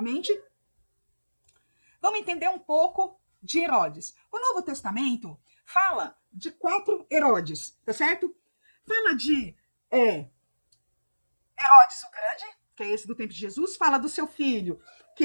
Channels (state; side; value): inverted; both; correlation -1.00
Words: Vamos entender um pouco de Herodes. O Novo Testamento fala de 4 Herodes, tá certo? Fala de Herodes o Grande, que é esse do tempo de Jesus. Fala do seu filho,